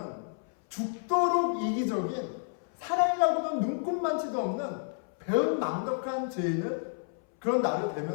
죽도록 이기적인 사랑이라고는 눈꼽만치도 없는 배은망덕한 죄인을 그런 나를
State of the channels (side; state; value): right; silent; 58 dB below the other